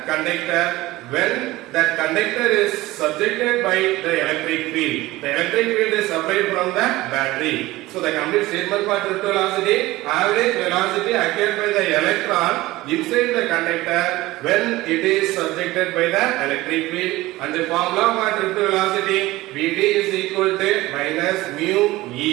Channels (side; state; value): left; quieter; 18.5 dB